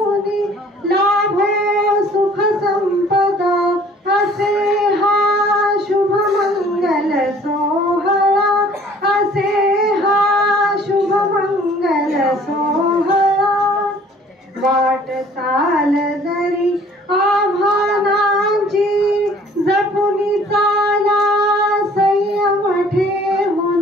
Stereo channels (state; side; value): normal; both; correlation 0.54